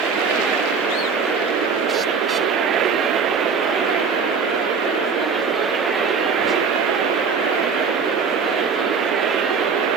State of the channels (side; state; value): left; quieter; 5.6 dB